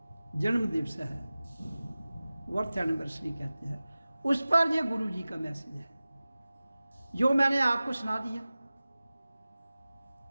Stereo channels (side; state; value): both; inverted; correlation -0.97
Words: जन्म दिवस है, वर्थ एनिवर्सरी कहते हैं, उस पर ये गुरु जी का मैसेज है जो मैंने आपको सुना दिया।